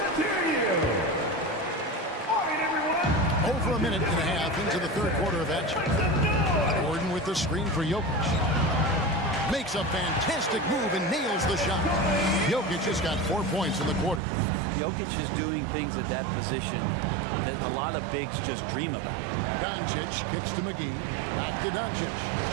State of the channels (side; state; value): left; drops out; at 14.2 s